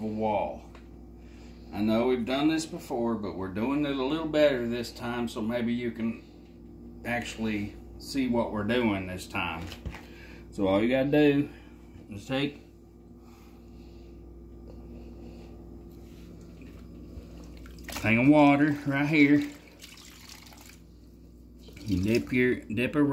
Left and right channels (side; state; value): both; identical; correlation 1.00